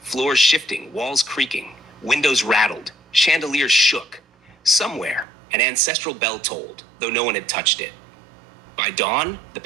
shifting, walls creaking, windows rattled, chandeliers shook. Somewhere, an ancestral bell tolled, though no one had touched it. By dawn, the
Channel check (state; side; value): drops out; left; at 5.2 s